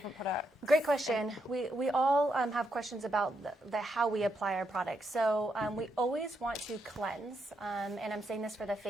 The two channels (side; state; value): both; normal; correlation 0.80